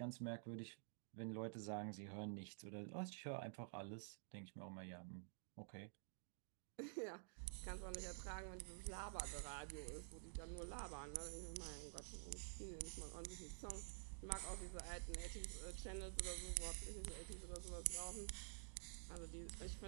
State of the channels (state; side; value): silent; left; digital silence